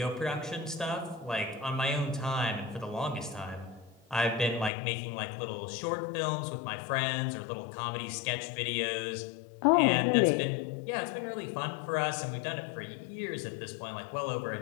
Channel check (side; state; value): right; drops out; at 4.7 s